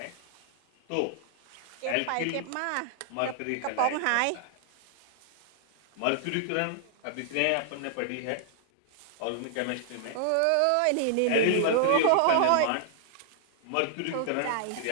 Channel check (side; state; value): both; different; correlation -0.01